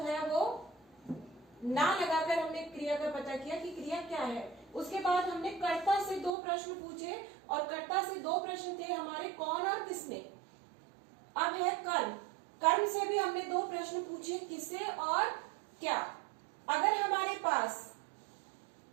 है वो ना लगाकर हमने क्रिया का पता किया कि क्रिया क्या है। उसके बाद हमने कर्ता से दो प्रश्न पूछे, और कर्ता से दो प्रश्न थे हमारे कौन और किसने। अब है कर्म, कर्म से भी हमने दो प्रश्न पूछे, किसे और क्या। अगर हमारे पास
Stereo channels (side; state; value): left; drops out; at 6.3 s